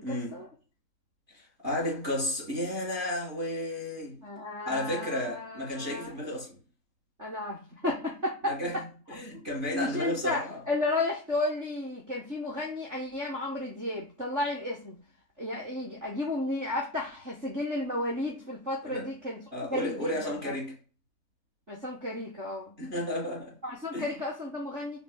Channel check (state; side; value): late; left; 3.3 ms